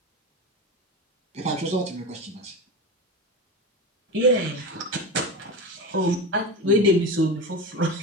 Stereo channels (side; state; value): both; normal; correlation 0.23